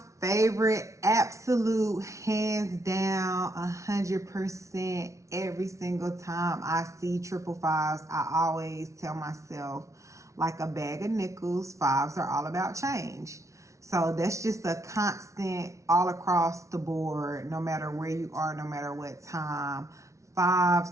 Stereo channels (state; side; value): late; left; 0.14 ms